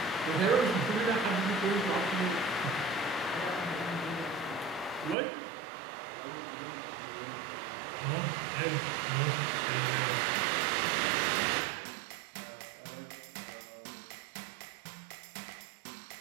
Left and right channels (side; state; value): left; drops out; at 5.2 s